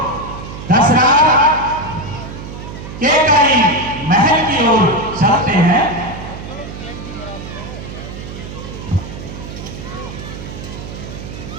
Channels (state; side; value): noise; right; hum, 11 dB below the sound